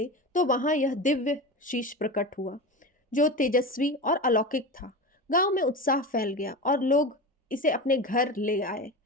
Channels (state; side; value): normal; both; correlation 0.26